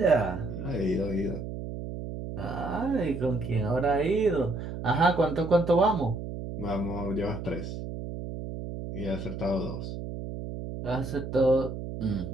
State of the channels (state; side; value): noise; right; hum, 7 dB below the sound